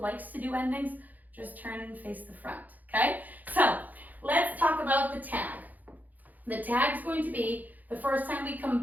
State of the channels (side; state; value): left; late; 0.082 ms